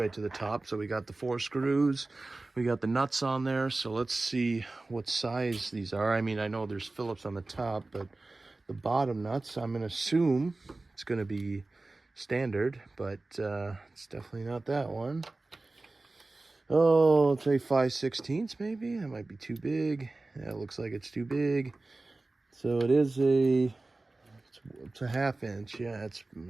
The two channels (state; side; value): quieter; left; 3.2 dB